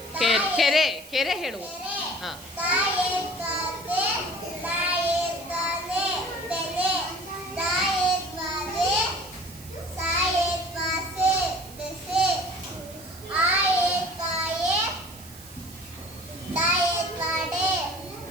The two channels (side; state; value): right; noise; hiss, 18 dB below the sound